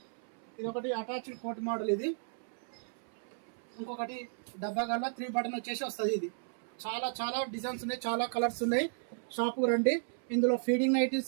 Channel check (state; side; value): silent; left; 55 dB below the other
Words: ఒకటి అటాచ్డ్ కోట్ మోడల్. ఇది ఇంకొకటి డబ్బా గల్ల 3 బటన్ వచ్చేసి వస్తుంది. ఇది చాలా డిజైన్స్ ఉన్నాయి, చాలా కలర్స్ ఉన్నాయి. షాపుకు రండి. ఇందులో ఫీడింగ్